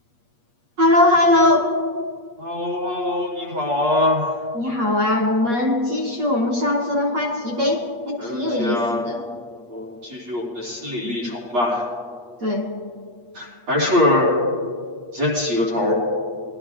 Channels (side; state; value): left; late; 8.4 ms